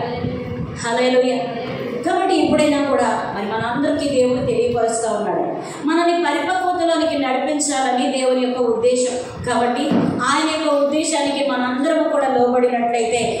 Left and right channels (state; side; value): identical; both; correlation 1.00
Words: హల్లెలూయా. కాబట్టి ఇప్పుడైనా కూడా మరి మనందరికీ దేవుడు తెలియపరుస్తూ ఉన్నాడు, మనల్ని పరిపక్వతలోనికి నడిపించాలని దేవుని యొక్క ఉద్దేశం. కాబట్టి ఆయన యొక్క ఉద్దేశానికి మనందరము కూడా లోబడినట్లయితే